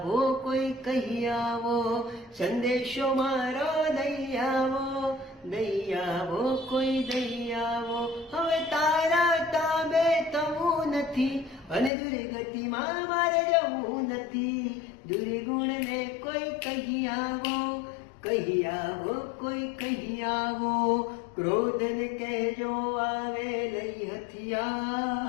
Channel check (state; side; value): drops out; right; at 11.9 s